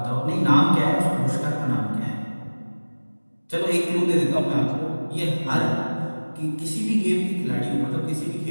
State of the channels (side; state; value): both; inverted; correlation -1.00